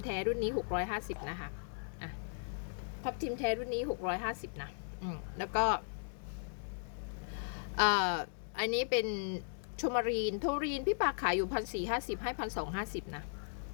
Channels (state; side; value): silent; right; digital silence